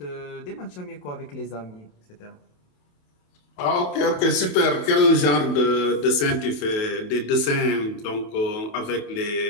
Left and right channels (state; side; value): late; right; 28 ms